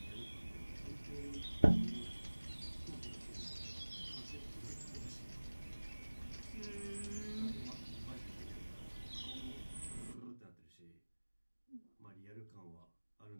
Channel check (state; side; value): inverted; both; correlation -1.00